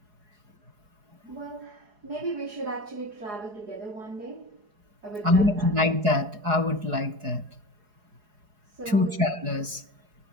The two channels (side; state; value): left; late; 4.8 ms